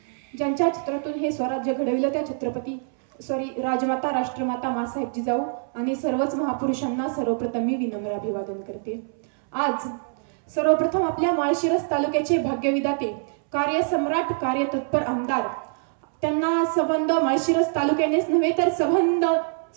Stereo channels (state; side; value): silent; left; 62 dB below the other